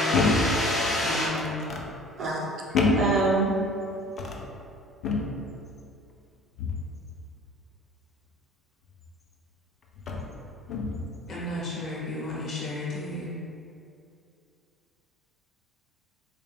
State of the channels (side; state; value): both; normal; correlation 0.46